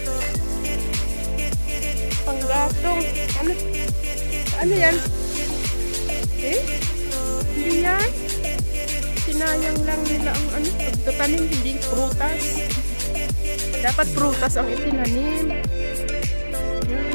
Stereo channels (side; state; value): both; inverted; correlation -1.00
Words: Panggatong. Ano yan? Hindi yan. Sinayang lang nila ang pagtatanim, hindi prutas. Dapat prutas ang itinanim.